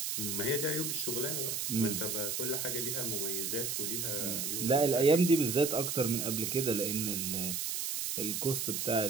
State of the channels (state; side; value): noise; right; hiss, 1 dB below the sound